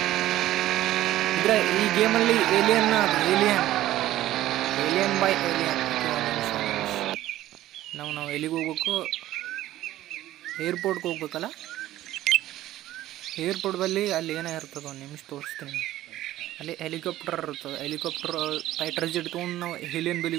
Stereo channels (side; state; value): left; quieter; 14.5 dB